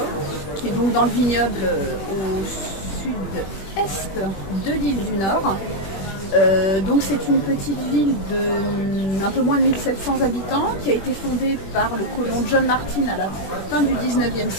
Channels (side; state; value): right; late; 21 ms